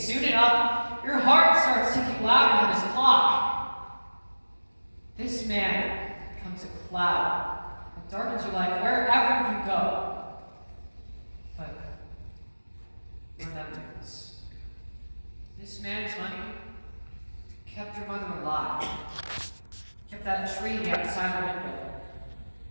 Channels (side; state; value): both; inverted; correlation -1.00